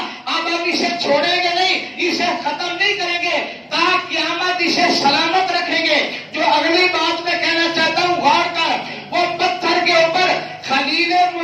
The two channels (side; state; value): both; identical; correlation 1.00